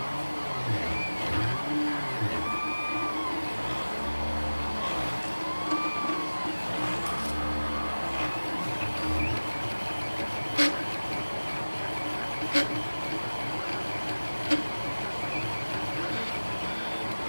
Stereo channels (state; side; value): inverted; both; correlation -1.00